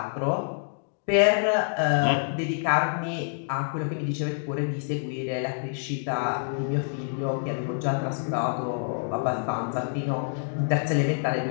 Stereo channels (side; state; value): right; silent; digital silence